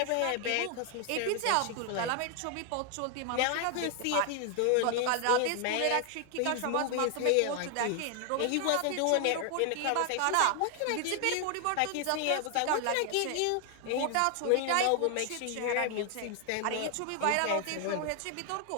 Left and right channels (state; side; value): different; both; correlation 0.00